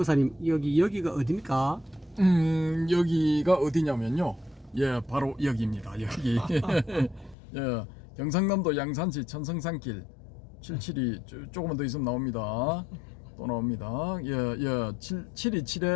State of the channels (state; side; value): drops out; right; at 7.4 s